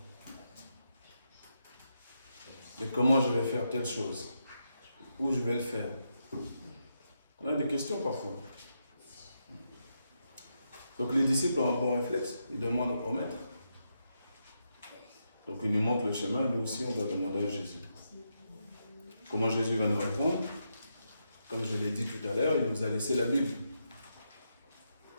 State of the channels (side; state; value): both; inverted; correlation -0.83